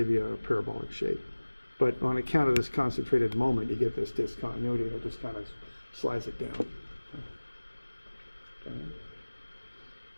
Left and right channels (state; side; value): inverted; both; correlation -1.00